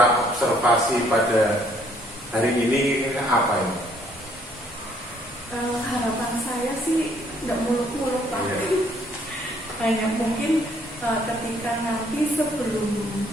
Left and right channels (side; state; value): both; normal; correlation 0.65